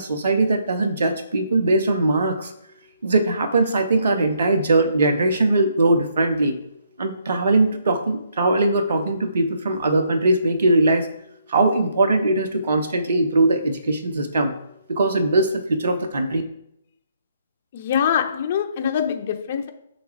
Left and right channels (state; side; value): inverted; both; correlation -0.71